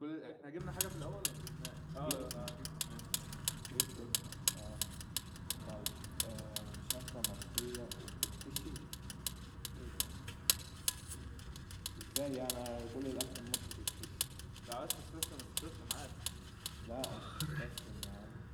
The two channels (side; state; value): both; identical; correlation 1.00